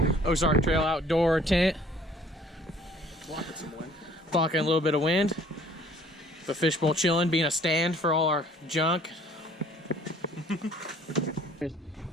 Trail outdoor tent. Blocking some wind. Blocking a little bit of wind. The fishbowl chilling, being a stand for all our junk.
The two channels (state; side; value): normal; both; correlation 0.56